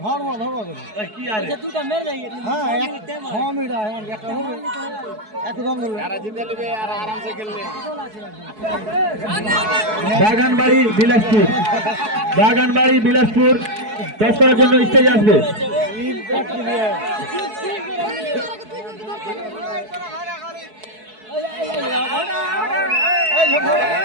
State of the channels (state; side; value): late; left; 4.7 ms